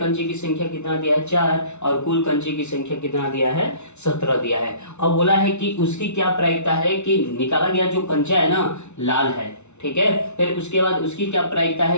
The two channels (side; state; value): right; late; 0.82 ms